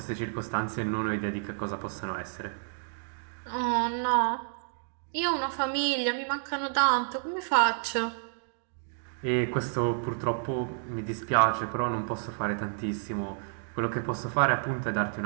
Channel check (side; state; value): left; silent; digital silence